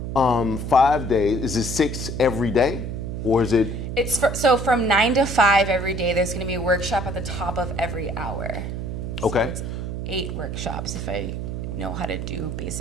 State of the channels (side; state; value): right; noise; hum, 5 dB below the sound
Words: 5 days. Is it 6 every day, or is it? So from 9 to 5 every day. There's going to be a workshop at the top of every hour. Okay. So it's 8 workshops if I know how to do